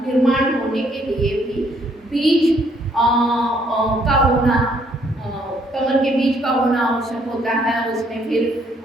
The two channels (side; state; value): both; normal; correlation 0.67